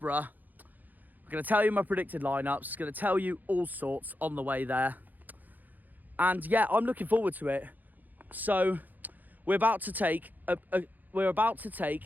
I'm going to tell you my predicted lineups, going to tell you all sorts on the way there. And yeah, I'm looking forward to it. So we're about to take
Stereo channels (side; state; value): left; late; 0.084 ms